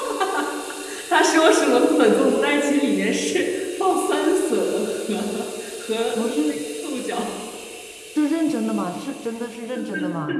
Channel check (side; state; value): both; identical; correlation 1.00